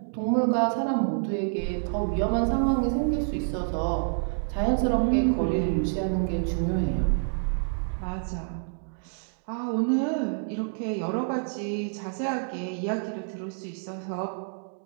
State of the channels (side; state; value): left; silent; digital silence